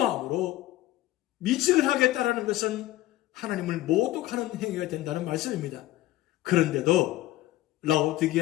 미직을 하겠다라는 것은 하나님을 모독하는 행위가 된다는 말씀입니다. 그런데도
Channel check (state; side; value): quieter; right; 16.0 dB